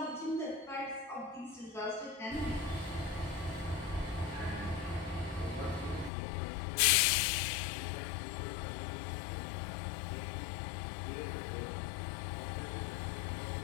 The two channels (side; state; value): right; drops out; at 6.1 s